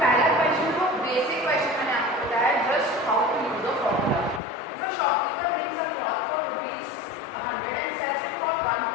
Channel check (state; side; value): drops out; right; at 4.4 s